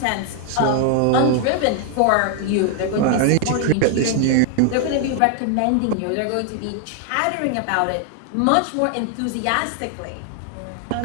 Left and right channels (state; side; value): different; both; correlation 0.00